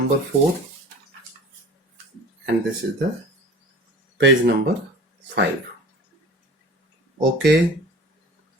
4, and this is the page number 5. Okay,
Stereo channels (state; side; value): normal; both; correlation 0.41